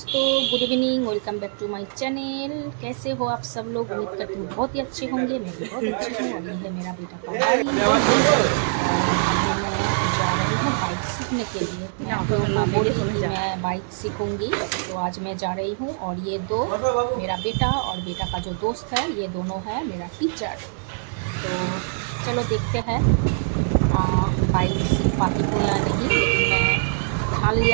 good evening. Welcome back to my channel. कैसे हो आप सब लोग? उम्मीद करती हूँ बहुत ही अच्छे होंगे। मैं भी बहुत अच्छी हूँ। और ये है मेरा बेटा का बाइक और अभी मैं जा रही हूँ बाइक सीखने के लिए। मैं आप लोगों को बोली कि मैं बाइक सीखूंगी, तो आज मैं जा रही हूँ। और ये दो, मेरा बेटा और बेटा का जो दोस्त है, ये दोनों है मेरा टीचर। तो चलो देखते हैं बाइक सीख पाती हूँ या नहीं, लेकिन मैं ठान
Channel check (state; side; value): silent; left; digital silence